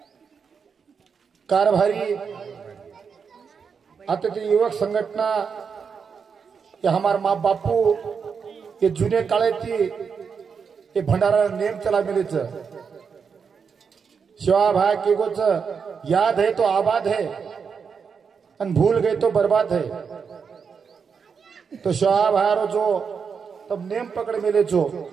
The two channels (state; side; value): quieter; left; 6.1 dB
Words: कारभारी आता युवक संघटना ये हमार माँ बापू ये जुने काळे थी ये भंडारा नेम चला मिले शिवा भाई के गोच याद है तो आबाद है अन भूल गए तो बर्बाद है तो शिवा भाई जो तब नेम पकड़ मिले जो